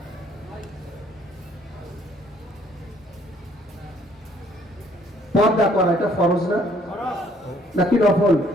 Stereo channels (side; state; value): both; normal; correlation 0.62